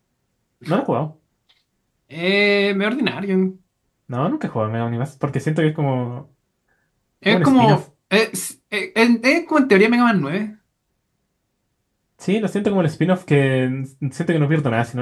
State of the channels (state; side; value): identical; both; correlation 1.00